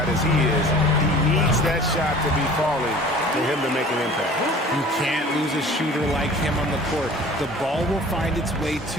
as he is. He needs that shot to be falling for him to make an impact. You can't lose a shooter like him on the court. The ball will find its way to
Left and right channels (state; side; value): normal; both; correlation 0.46